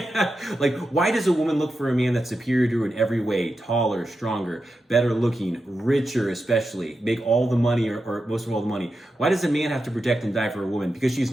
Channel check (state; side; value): normal; both; correlation 0.89